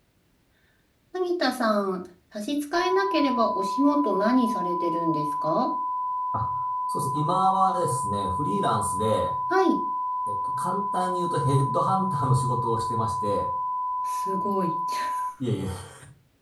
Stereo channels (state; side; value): identical; both; correlation 1.00